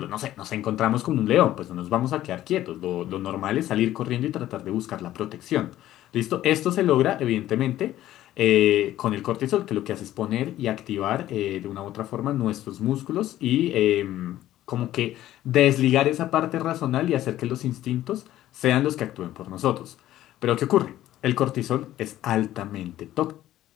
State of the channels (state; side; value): quieter; right; 13.7 dB